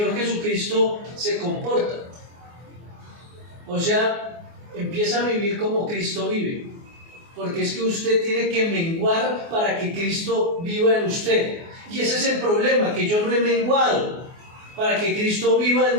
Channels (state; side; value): late; left; 24 ms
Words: Jesucristo se comporta. O sea, empieza a vivir como Cristo vive, porque es que usted tiene que menguar para que Cristo viva en usted. Y ese es el problema, que yo no he menguado para que Cristo viva en